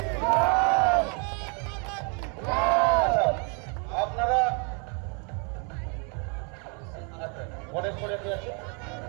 আপনারা গণেশ করে আছে।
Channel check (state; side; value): quieter; left; 36.2 dB